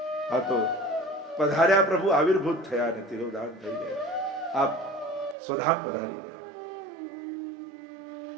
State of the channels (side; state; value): left; drops out; at 5.4 s